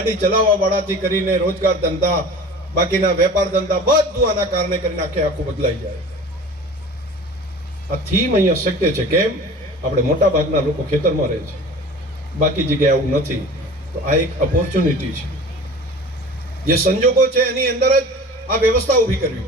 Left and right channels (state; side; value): normal; both; correlation 0.40